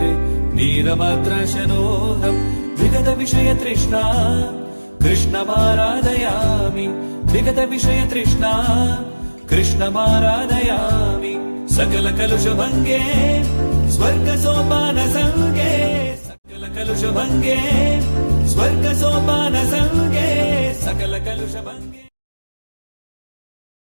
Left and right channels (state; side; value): inverted; both; correlation -1.00